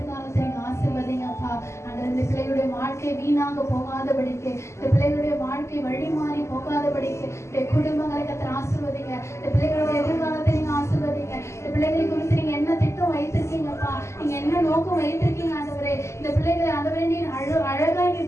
நீங்க ஆசீர்வதிங்கப்பா. ஆண்டவரே, இந்த பிள்ளைகளுடைய வாழ்க்கை வீணாக போகாதபடிக்கு, இந்த பிள்ளைகளுடைய வாழ்க்கை வழி மாறி போகாதபடிக்கு, இந்த குடும்பங்களை கத்தர் ஆசீர்வதிங்க. இந்த பிள்ளைகளுடைய எதிர்காலத்தை நீங்க ஆசீர்வதிங்க. இந்த பிள்ளைகளை குறித்து நீங்க என்ன திட்டம் வைத்திருக்கீங்கப்பா, நீங்க என்ன நோக்கம் வைத்திருக்கீங்க ஆண்டவரே. இந்த பிள்ளைகளை ஆண்டவரே நீர் அழகாய்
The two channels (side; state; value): right; late; 0.13 ms